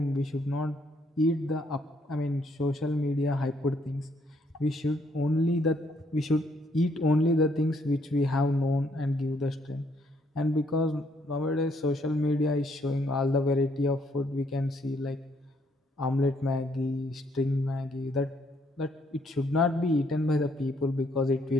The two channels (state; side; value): normal; both; correlation 0.70